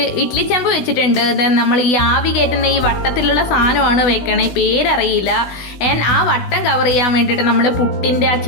ഇഡ്ഡലി ചെമ്പ് വെച്ചിട്ടുണ്ട്. നമ്മൾ ഈ ആവി കയറ്റുന്ന ഈ വട്ടത്തിലുള്ള സാധനമാണ് വെക്കണേ, പേരറിയില്ല. ആ വട്ടം കവർ ചെയ്യാൻ വേണ്ടിയിട്ട് നമ്മൾ പുട്ടിൻ്റെ ആ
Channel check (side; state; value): right; late; 16 ms